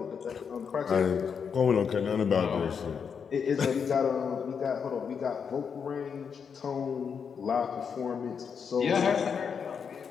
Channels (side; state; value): right; quieter; 6.6 dB